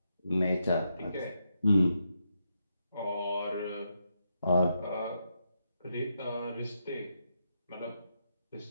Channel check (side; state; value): both; inverted; correlation -0.82